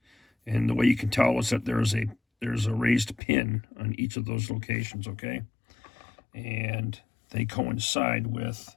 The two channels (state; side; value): drops out; right; at 3.2 s